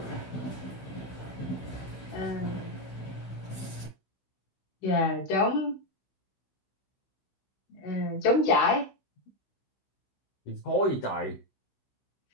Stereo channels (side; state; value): right; late; 15 ms